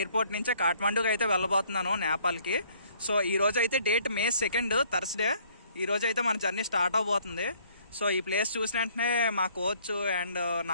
నుంచే కాఠ్మాండూకి అయితే వెళ్ళబోతున్నాను, నేపాల్ కి. సో ఈ రోజు అయితే డేట్ May 2nd థర్స్డే. ఈ రోజు అయితే మన జర్నీ స్టార్ట్ అవబోతుంది. సో ఈ ప్లేస్ చూసిన వెంటనే మా కోచ్ అండ్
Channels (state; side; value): inverted; both; correlation -0.62